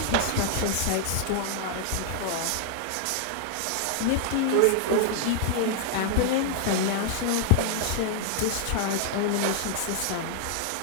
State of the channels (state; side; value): different; both; correlation 0.00